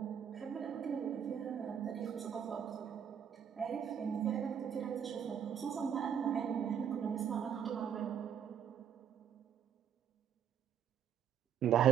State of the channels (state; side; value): quieter; left; 8.5 dB